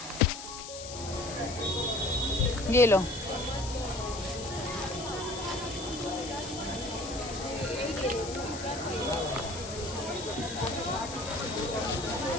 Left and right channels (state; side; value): noise; left; hiss, 10 dB below the sound